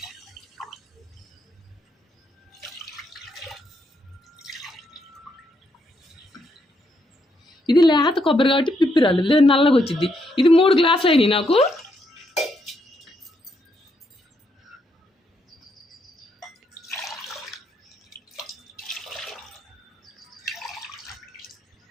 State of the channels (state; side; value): normal; both; correlation 0.77